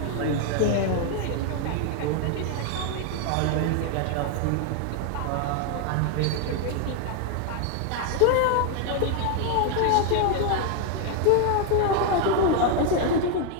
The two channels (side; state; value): both; different; correlation 0.00